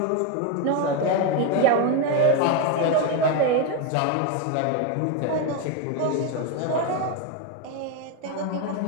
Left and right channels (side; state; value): both; different; correlation 0.03